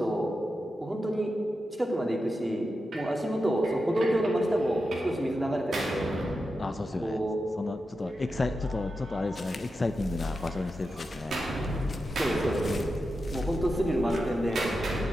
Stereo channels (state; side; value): normal; both; correlation 0.89